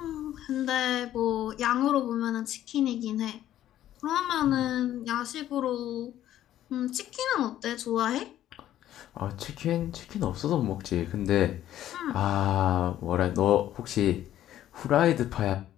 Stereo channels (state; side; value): quieter; right; 12.4 dB